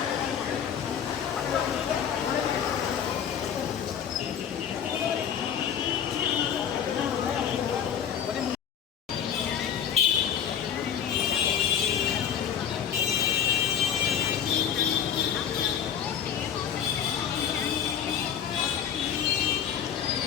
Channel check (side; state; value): right; quieter; 8.7 dB